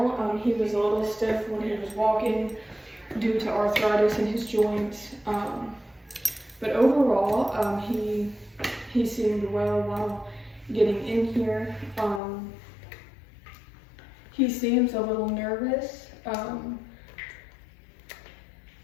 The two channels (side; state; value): right; drops out; at 12.2 s